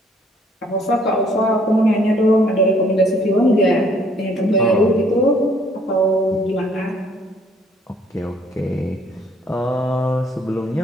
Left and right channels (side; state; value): both; normal; correlation 0.62